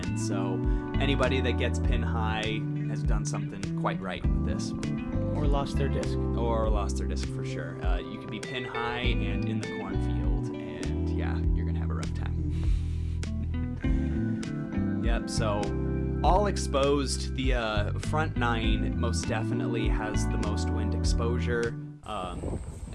so anybody that gets pin high has done something quite right with this. Or lost their disc. Or lost their disc for sure. You could be pin high and in the cornfield, and yeah, you're going to have a rough time. Yep, so all exposed. The front 9 most definitely has the most wind exposure,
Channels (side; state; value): both; identical; correlation 1.00